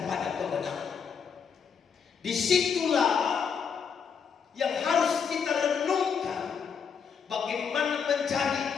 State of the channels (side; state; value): right; quieter; 6.5 dB